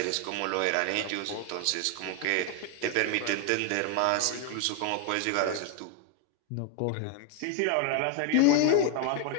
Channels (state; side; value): different; both; correlation 0.01